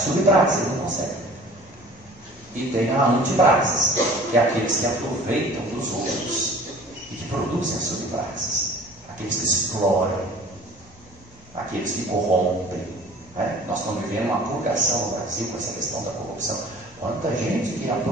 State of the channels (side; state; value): both; normal; correlation 0.47